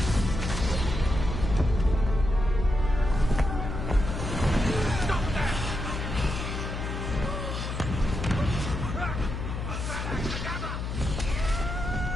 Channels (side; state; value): left; noise; hum, 4 dB below the sound